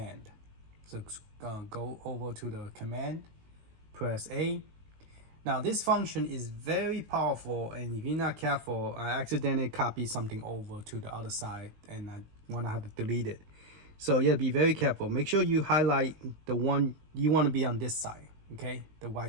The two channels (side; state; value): left; late; 19 ms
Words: So go over to the command, press A. Now this function is very powerful, and if you're not careful, I accidentally copy something over to the other side and I want to have to delete it. So yeah, be very careful. Make sure you highlight the one you want to be on this side, okay, the